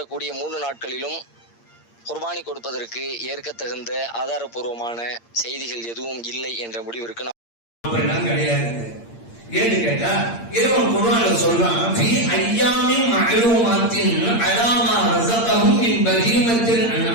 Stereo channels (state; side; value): late; right; 8.7 ms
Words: 3 நாட்களிலும் குர்பானி கொடுப்பதற்கு ஏற்க தகுந்த ஆதாரபூர்வமான செய்திகள் எதுவும் இல்லை என்ற முடிவிற்கு அப்படிலாம் கிடையாது. ஏன்னு கேட்டா இறைவன் குர்ஆன்ல சொல்றான், ஃபீ அய்யாமின் மஅலூமாத்தின் அலாமா ரஸகஹும் மின் பஹீமத்தில்